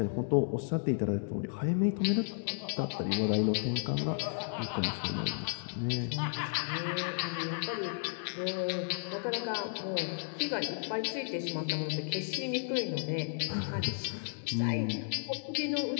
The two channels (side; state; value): right; silent; 55 dB below the other